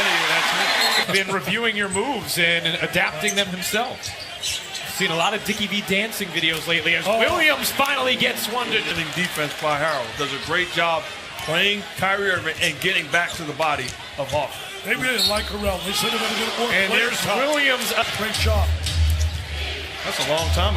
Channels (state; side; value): identical; both; correlation 1.00